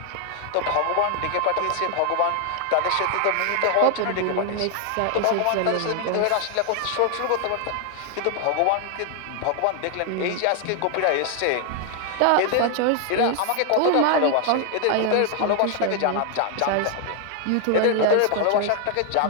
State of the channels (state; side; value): different; both; correlation 0.00